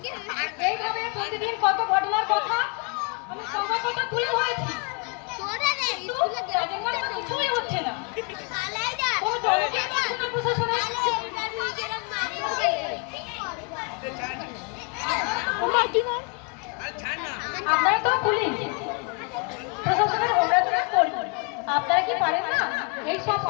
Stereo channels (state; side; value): quieter; right; 34.0 dB